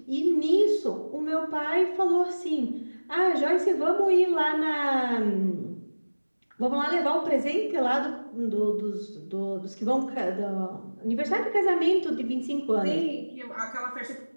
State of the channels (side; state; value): both; inverted; correlation -1.00